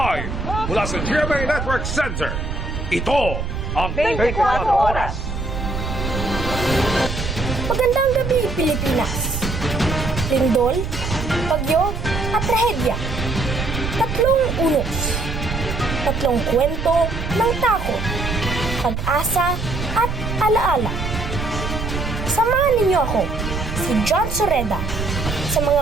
mula sa GMA Network Center, ito ang 24 Oras. Magandang gabi, Pilipinas. Lindol, bagyo, at trahedya. Tatlong unos. Tatlong kwento ng takot, pag-asa, at alaala. Samahan ninyo ako, si John Soreda, sa mga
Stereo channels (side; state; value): right; noise; rumble, 4 dB below the sound